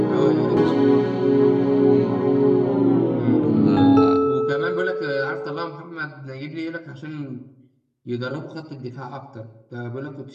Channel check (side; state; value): both; identical; correlation 1.00